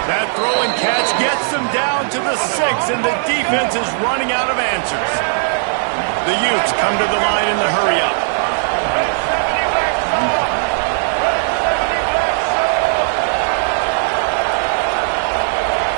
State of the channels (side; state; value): left; silent; digital silence